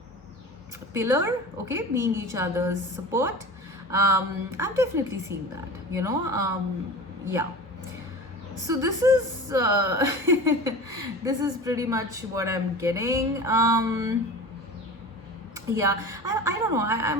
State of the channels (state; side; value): normal; both; correlation 0.34